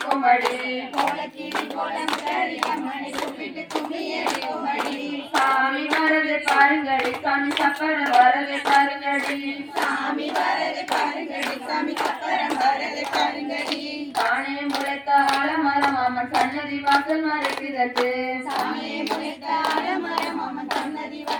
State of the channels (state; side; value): identical; both; correlation 1.00